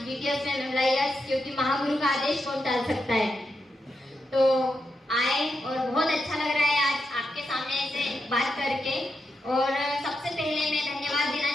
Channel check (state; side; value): normal; both; correlation 0.86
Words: जीटीएस में मेमोरियस, क्योंकि महागुरु का आदेश कौन टाल सकता है। तो आए और बहुत अच्छा लग रहा है आज आपके सामने ऐसे बात करके। और सबसे पहले मैं धन्यवाद देना